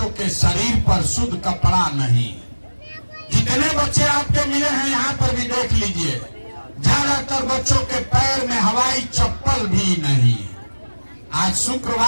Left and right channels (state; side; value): inverted; both; correlation -1.00